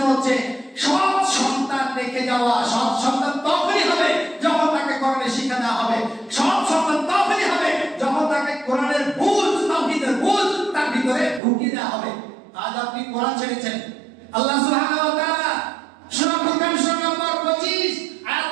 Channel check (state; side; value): drops out; left; at 11.4 s